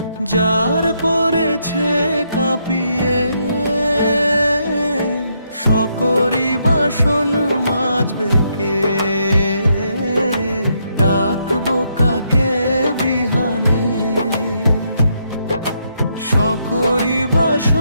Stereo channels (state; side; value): inverted; both; correlation -0.77